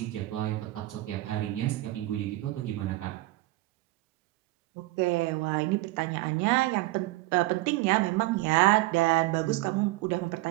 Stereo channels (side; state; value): left; quieter; 18.9 dB